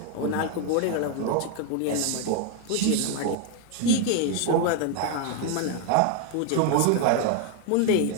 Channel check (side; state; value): both; different; correlation 0.01